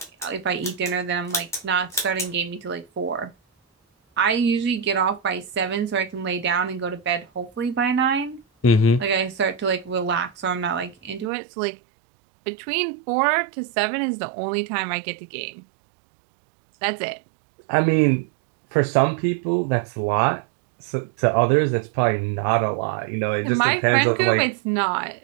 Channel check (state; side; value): drops out; left; at 11.3 s